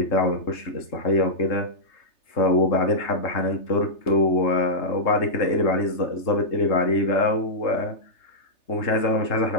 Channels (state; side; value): late; right; 3.3 ms